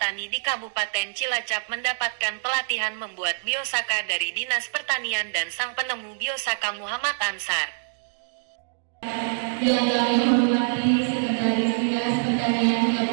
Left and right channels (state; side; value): silent; left; digital silence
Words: di Kabupaten Cilacap mendapatkan pelatihan membuat biosaka dari Dinas Pertanian dan sang penemu biosaka Muhammad Ansar. Yang kami hormati Sekretaris Dinas Pertanian